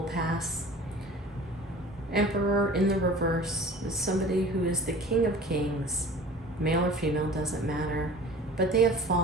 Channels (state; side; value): normal; both; correlation 0.43